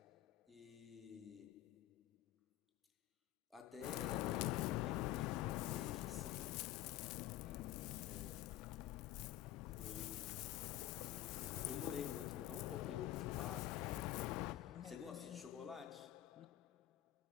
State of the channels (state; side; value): quieter; right; 14.0 dB